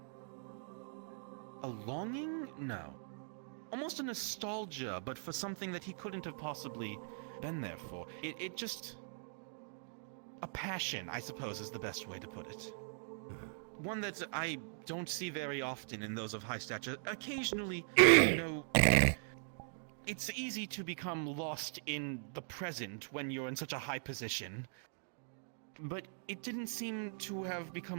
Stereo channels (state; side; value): silent; left; digital silence